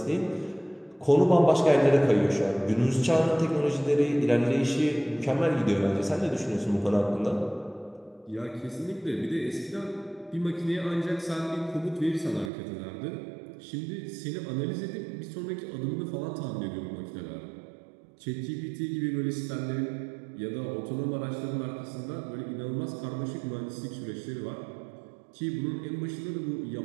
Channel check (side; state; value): left; drops out; at 12.5 s